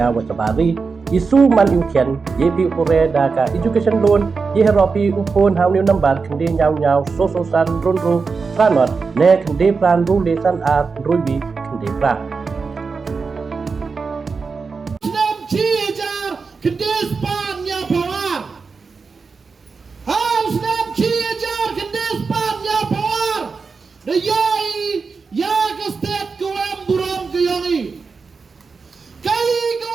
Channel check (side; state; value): left; quieter; 4.8 dB